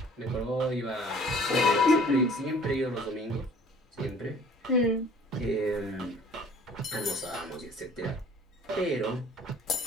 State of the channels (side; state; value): both; normal; correlation 0.51